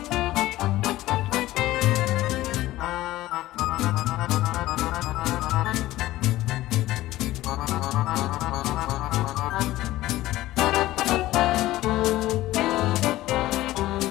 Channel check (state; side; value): quieter; right; 16.3 dB